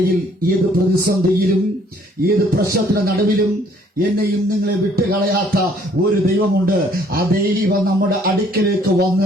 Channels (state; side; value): normal; both; correlation 0.61